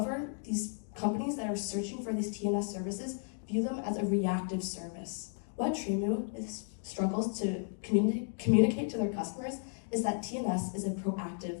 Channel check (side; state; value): right; silent; 55 dB below the other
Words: these companies that are searching for these TNS services view them as a reactive service. What Tremau struggles to communicate to their customers is that TNS is a